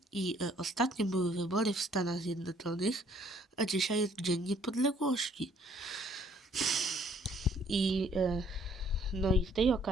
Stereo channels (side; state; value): both; normal; correlation 0.62